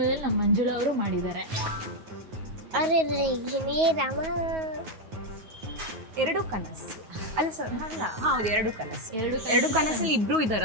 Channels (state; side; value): late; left; 9.4 ms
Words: ನಮ್ಮ ಮಂಜುಳಾ ಅವರು ಮಾಡಿದ್ದಾರೆ. ಅರೆ ರಾಮ. ಎರಡು ಕನಸು ಅಲ್ಲ ಸರ್? ಅಲ್ಲ, ಹೌದು, ಎರಡು ಕನಸು. ಎರಡು ಕನಸಲ್ಲಿ ಇಬ್ರು